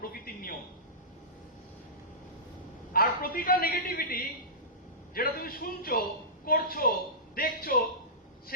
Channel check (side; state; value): both; normal; correlation -0.20